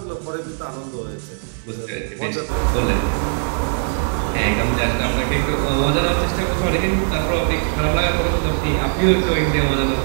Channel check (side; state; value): left; silent; digital silence